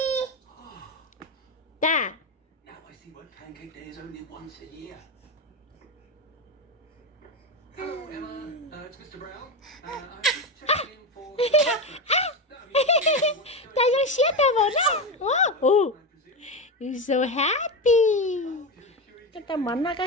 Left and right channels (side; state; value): both; normal; correlation 0.16